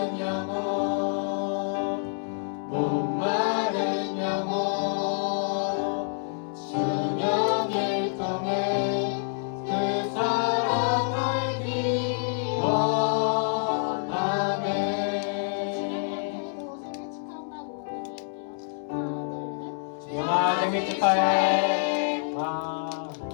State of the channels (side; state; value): right; silent; 60 dB below the other